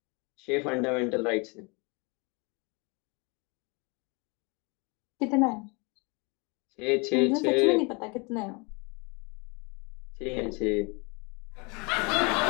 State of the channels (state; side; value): quieter; right; 29.9 dB